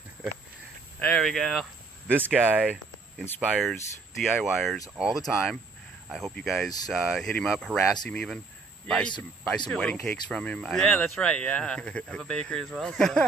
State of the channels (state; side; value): quieter; left; 4.3 dB